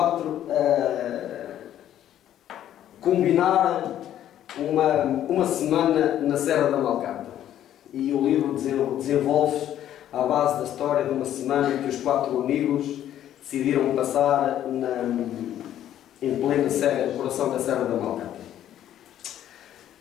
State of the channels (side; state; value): right; quieter; 11.4 dB